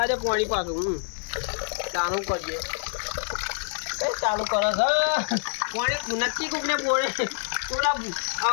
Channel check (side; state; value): right; silent; digital silence